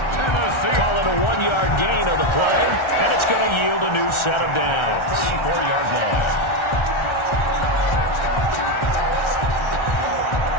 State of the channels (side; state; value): right; late; 1.4 ms